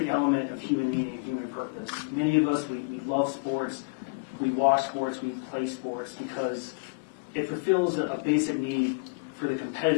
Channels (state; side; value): quieter; right; 33.8 dB